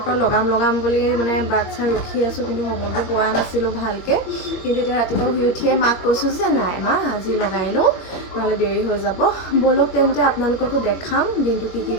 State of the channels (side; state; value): right; late; 21 ms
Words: পৰা লগাম বুলি মানে বাট চাই ৰখি আছোঁ কিন্তু সময়বোৰ পোৱা নাছিলোঁ ভালকৈ কিন্তু এতিয়া ৰাতিপুৱা শুই উঠিয়ে মাক কৈছোঁ যে নাই মা আজি লগাই লওঁ নহ'লে দেৰি হৈ যাব ব'লক তেন্তে আপোনালোককো দেখাম দিনটো কি